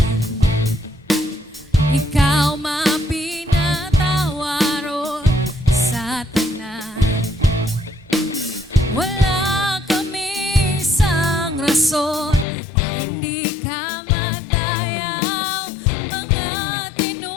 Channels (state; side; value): drops out; right; at 12.5 s